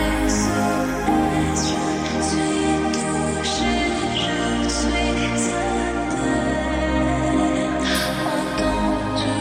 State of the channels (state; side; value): identical; both; correlation 1.00